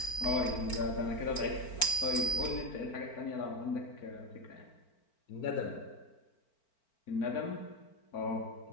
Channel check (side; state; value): right; late; 4.4 ms